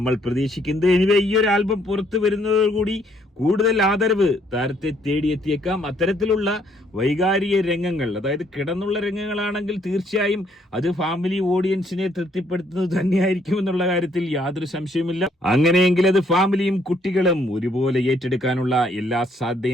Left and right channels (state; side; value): normal; both; correlation 0.68